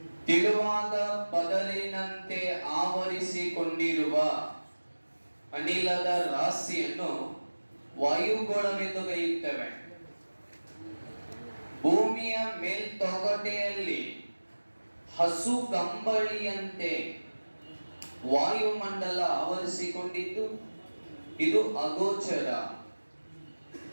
ತೆಳುವಾದ ಪದರಿನಂತೆ ಆವರಿಸಿಕೊಂಡಿರುವ ಅನಿಲದ ರಾಶಿಯನ್ನು ವಾಯುಗೋಳವೆಂದು ಕರೆಯುತ್ತೇವೆ. ಭೂಮಿಯ ಮೇಲ್ತೊಗಟೆಯಲ್ಲಿ ಹಸು ಕಂಬಳಿಯಂತೆ ವಾಯುಮಂಡಲ ಆವರಿಸಿಕೊಂಡಿದ್ದು, ಇದು ಅಗೋಚರ,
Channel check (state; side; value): inverted; both; correlation -1.00